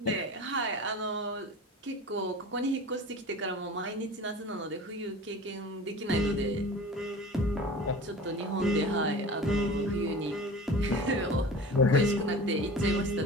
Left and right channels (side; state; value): both; normal; correlation 0.37